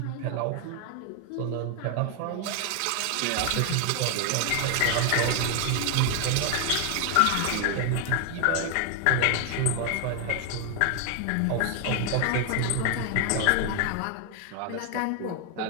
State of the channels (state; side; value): different; both; correlation 0.00